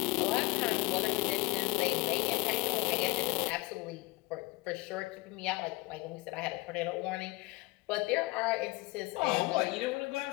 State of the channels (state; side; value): quieter; right; 22.6 dB